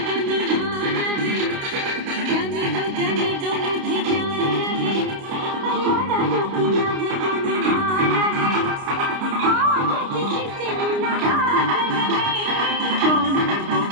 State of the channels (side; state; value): left; late; 29 ms